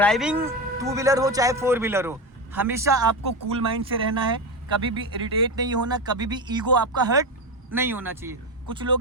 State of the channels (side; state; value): both; normal; correlation 0.17